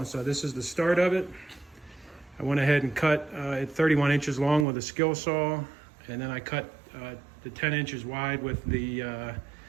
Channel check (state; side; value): drops out; left; at 4.7 s